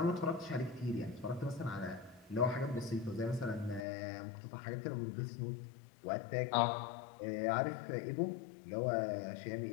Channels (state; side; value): drops out; right; at 3.9 s